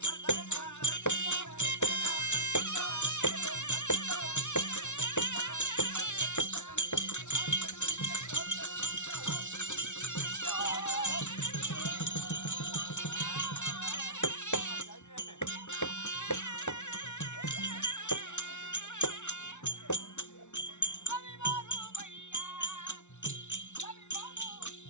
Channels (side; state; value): right; late; 0.83 ms